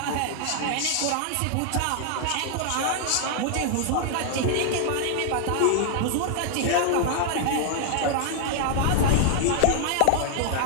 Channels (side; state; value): both; different; correlation 0.00